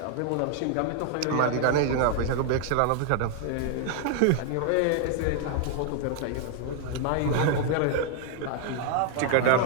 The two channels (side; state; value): both; different; correlation 0.00